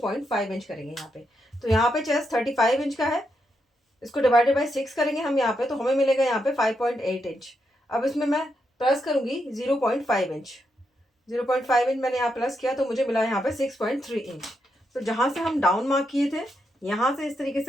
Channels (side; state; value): both; normal; correlation 0.82